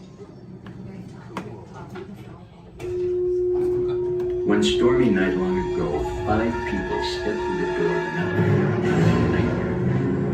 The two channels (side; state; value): both; identical; correlation 1.00